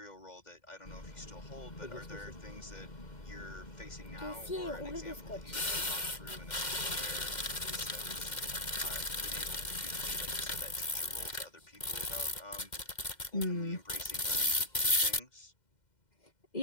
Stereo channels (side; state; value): right; late; 2.1 ms